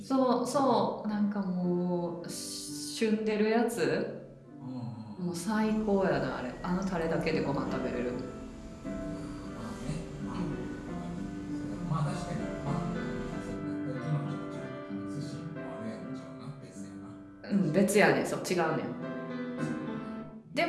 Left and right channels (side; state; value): both; identical; correlation 1.00